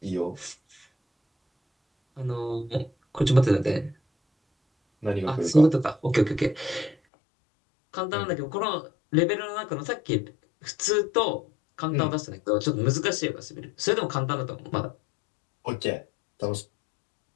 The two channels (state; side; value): drops out; right; at 7.0 s